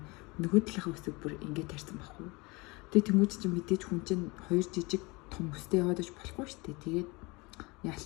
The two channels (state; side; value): quieter; right; 25.5 dB